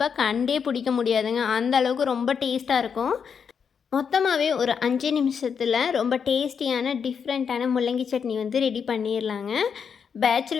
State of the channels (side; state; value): right; quieter; 6.7 dB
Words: கண்டே பிடிக்க முடியாதுங்க. அந்த அளவுக்கு ரொம்ப டேஸ்ட்டாக இருக்கும். மொத்தமாகவே ஒரு 5 நிமிஷத்தில் ரொம்ப டேஸ்டியான டிஃப்ரெண்ட்டான முள்ளங்கி சட்னி வந்து ரெடி பண்ணிடலாங்க.